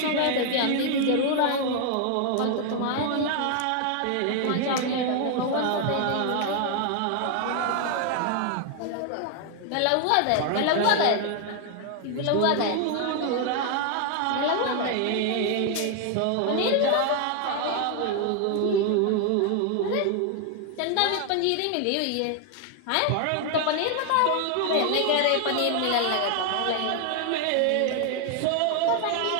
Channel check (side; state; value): both; different; correlation 0.00